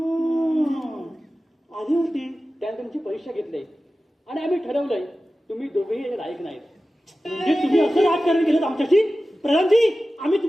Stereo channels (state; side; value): normal; both; correlation 0.95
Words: तुमची परीक्षा घेतली आणि आम्ही ठरवलंय तुम्ही दोघेही लायक नाहीत. म्हणजे तुम्ही असं राजकारण केलं आमच्याशी? प्रधानजी, आम्ही